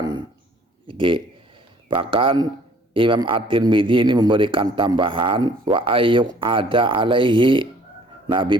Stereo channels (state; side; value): normal; both; correlation 0.57